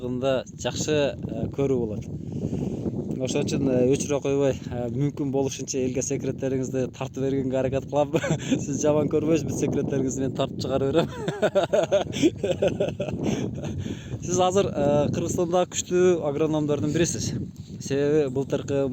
жакшы көрүү болот. Ошон үчүн өчүрө койбой, мүмкүн болушунча элге секреттериңизди тартып бергенге аракет кылам. Сиз жаман көрбөйсүз, бүт секреттериңизди мен тартып чыгарып берем. Сиз азыр Кыргызстандагы күчтүү агрономдордун бирисиз. Себеби былтыркы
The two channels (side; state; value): both; identical; correlation 1.00